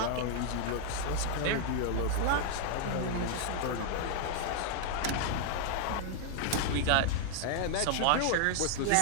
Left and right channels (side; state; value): both; different; correlation 0.00